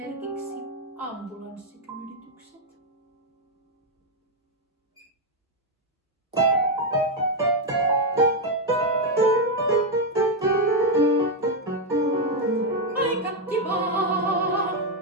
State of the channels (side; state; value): both; normal; correlation 0.03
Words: ambulanssikyyditykset? Aika kivaa!